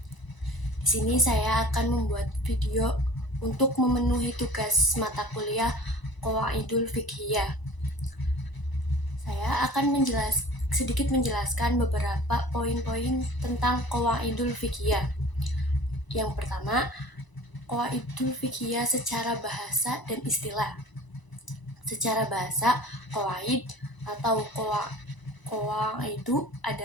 Di sini saya akan membuat video untuk memenuhi tugas mata kuliah Qawaidul Fiqhiyah. Saya akan sedikit menjelaskan beberapa poin-poin tentang Qawaidul Fiqhiyah. Yang pertama, Qawaidul Fiqhiyah secara bahasa dan istilah. Secara bahasa, qawaid atau qawaidu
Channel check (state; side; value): late; right; 1.0 ms